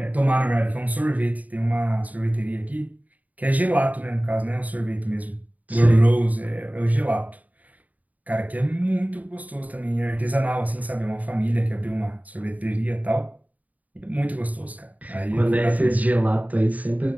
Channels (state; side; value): late; left; 0.075 ms